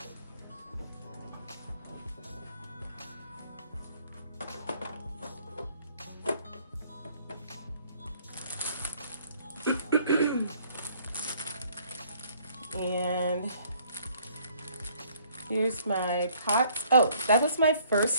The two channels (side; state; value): both; inverted; correlation -0.61